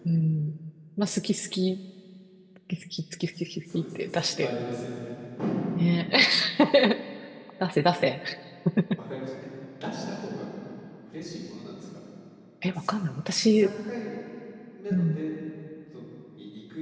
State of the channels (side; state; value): both; identical; correlation 1.00